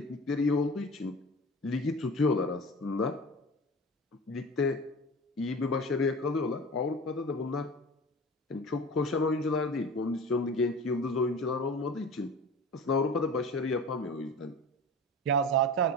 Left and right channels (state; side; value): normal; both; correlation 0.36